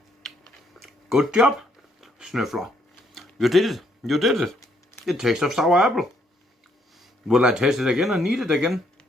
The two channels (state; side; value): normal; both; correlation 0.70